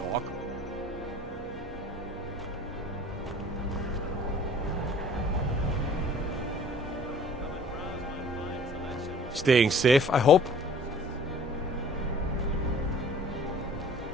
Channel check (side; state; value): both; normal; correlation 0.50